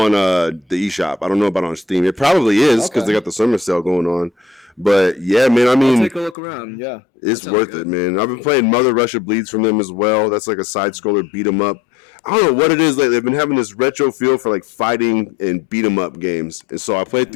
the eShop. I don't know about on Steam. It probably is because they got the summer sale going on. But yeah, man, I mean, I'll take a look around. Yeah, it's worth it, man. I've been playing Mother Russia Bleeds from them as well. That's like a side scroller beat 'em up. I don't know what it is. Like they've been having this retro feel for like fighting and beat 'em up games, and so I played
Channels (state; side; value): drops out; right; at 6.4 s